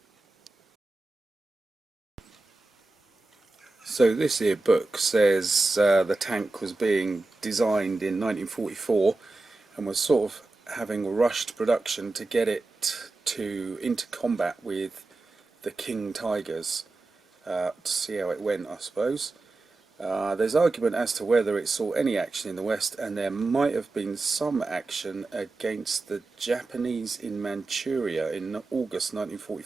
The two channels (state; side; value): quieter; left; 3.3 dB